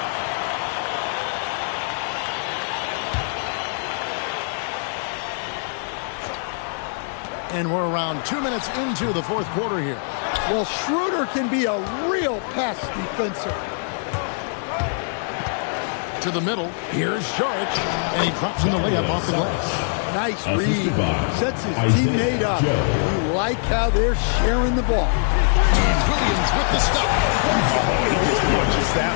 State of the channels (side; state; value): right; silent; 57 dB below the other